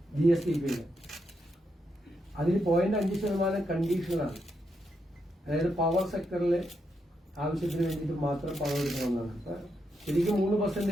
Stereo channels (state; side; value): normal; both; correlation 0.82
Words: GSTP-യിൽ. അതിൽ 0.5% കണ്ടീഷനാണ്. അതായത് പവർ സെക്ടറിൽ ആവശ്യത്തിന് വേണ്ടിയിട്ട് മാത്രം പണം എടുക്കണമെന്നാണ്. ശരിക്കും